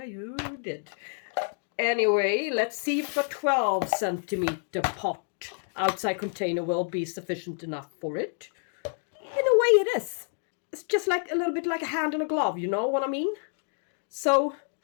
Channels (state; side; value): silent; right; 59 dB below the other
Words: you did. Anyway, let's see if a 12 centimeter pot outside container will be sufficient enough for it. In a way it is. It's just like a little bit like a hand in a glove, you know what I mean? So